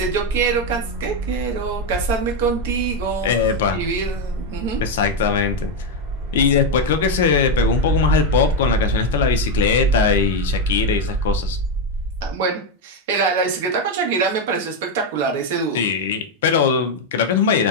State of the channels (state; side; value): normal; both; correlation 0.05